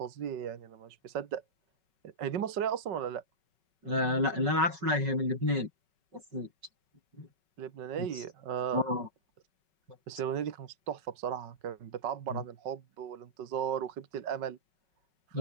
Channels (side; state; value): left; late; 5.4 ms